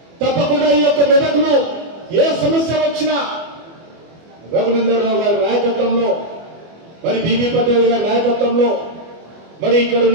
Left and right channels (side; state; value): left; late; 24 ms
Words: తప్పకుండా ఈ యొక్క మెదకులో ఏ సమస్య వచ్చినా రఘునందనరావు గారి నాయకత్వంలో, మరి బీబీ పటేల్ గారి నాయకత్వంలో, మరి ఇక్కడ